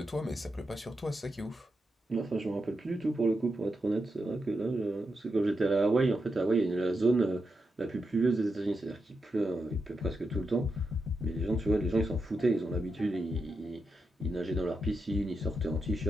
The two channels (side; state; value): both; normal; correlation 0.86